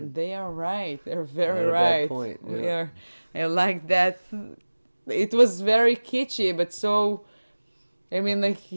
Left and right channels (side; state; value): both; inverted; correlation -1.00